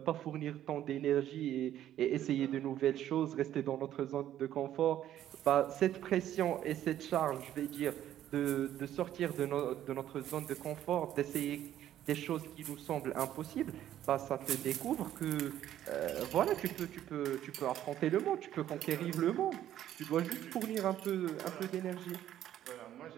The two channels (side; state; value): left; quieter; 11.8 dB